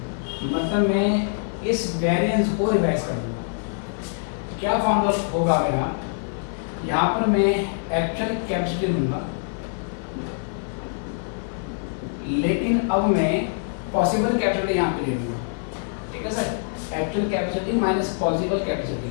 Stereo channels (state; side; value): silent; right; 62 dB below the other